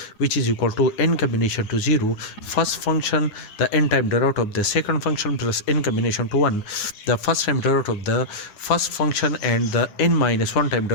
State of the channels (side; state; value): right; late; 9.6 ms